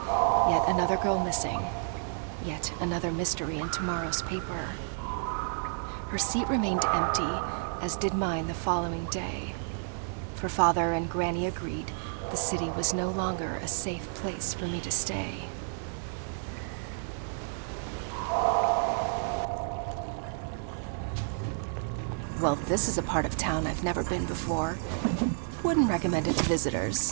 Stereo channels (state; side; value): silent; left; digital silence